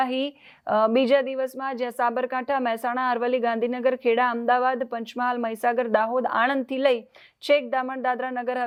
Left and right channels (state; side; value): identical; both; correlation 1.00